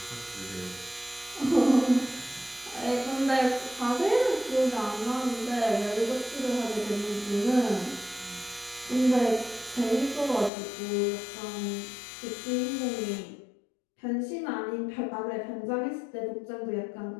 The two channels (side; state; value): right; drops out; at 10.5 s